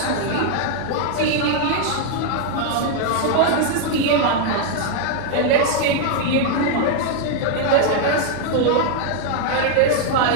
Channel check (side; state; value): both; different; correlation 0.00